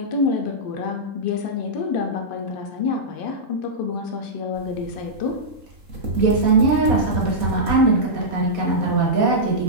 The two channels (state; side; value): late; left; 3.7 ms